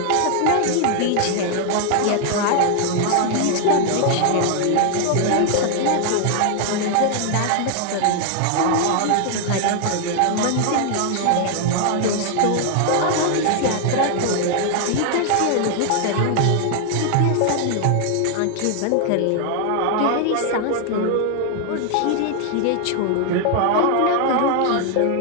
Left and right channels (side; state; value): both; different; correlation 0.00